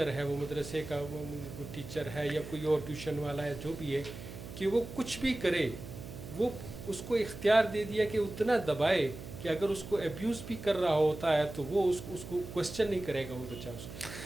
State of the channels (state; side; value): noise; right; hum, 12 dB below the sound